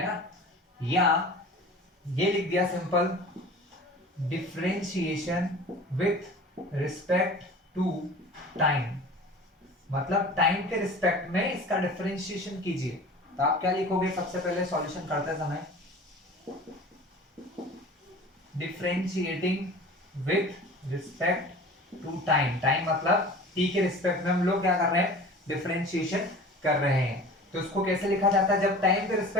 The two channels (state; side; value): normal; both; correlation 0.40